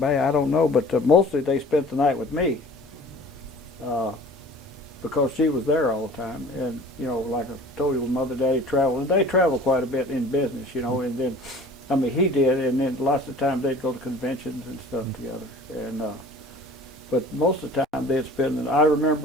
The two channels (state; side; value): normal; both; correlation 0.46